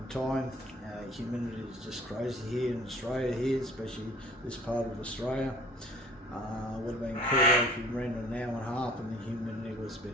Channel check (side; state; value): both; normal; correlation 0.50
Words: time. Humidity is just crazy here in Australia, especially this part of Australia. Would have been cooler if you ran an hour and a half and the humidity was a